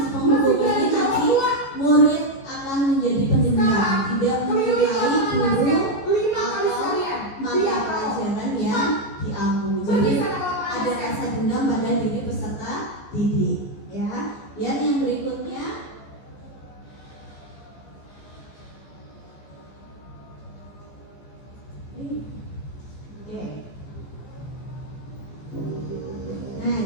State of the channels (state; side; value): late; right; 15 ms